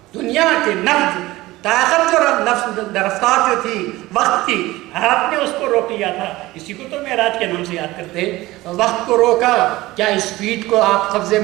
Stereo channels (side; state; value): left; quieter; 18.5 dB